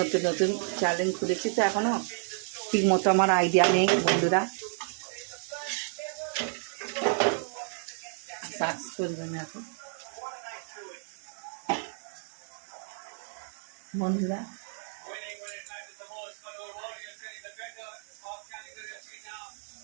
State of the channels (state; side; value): silent; left; 57 dB below the other